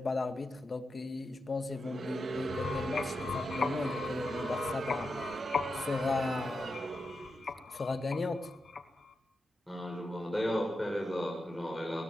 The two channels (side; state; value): both; normal; correlation 0.88